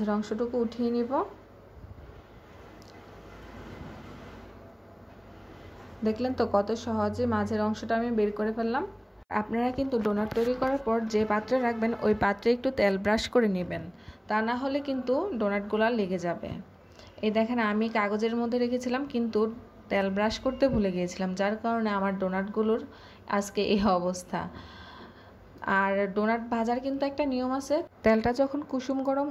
অংশটুকু উঠিয়ে নিব। দেখলেন তো কত সহজে মাঝের অংশটা আমি বের করে ফেললাম। আপনারা কিন্তু ডোনাট তৈরি করার পর যে পাত্রে রাখবেন ওই পাত্রে একটু তেল ব্রাশ করে নেবেন, তা না হলে কিন্তু ডোনাটগুলো লেগে যাবে। এই দেখেন আমি কাগজের মধ্যে রেখেছিলাম কিন্তু তেল ব্রাশ করতে ভুলে গিয়েছিলাম, যার কারণে আমার ডোনাটগুলোর আজকে এই অবস্থা। আর ডোনাট ভাজার কিন্তু একটা নিয়ম আছে, তেলটা যখন কুসুম গরম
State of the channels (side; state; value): both; identical; correlation 1.00